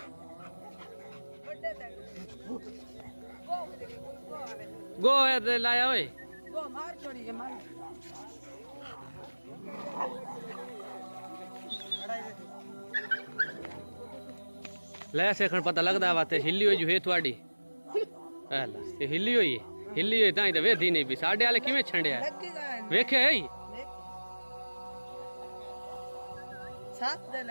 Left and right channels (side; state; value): both; inverted; correlation -1.00